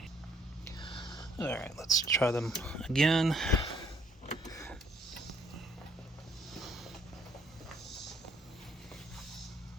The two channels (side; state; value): both; normal; correlation 0.64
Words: All right, let's try them again.